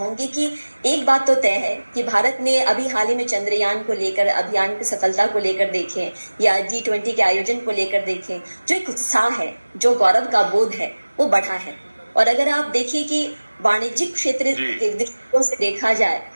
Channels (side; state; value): both; inverted; correlation -1.00